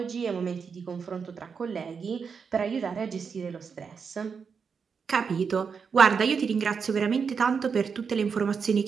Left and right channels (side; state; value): left; quieter; 6.0 dB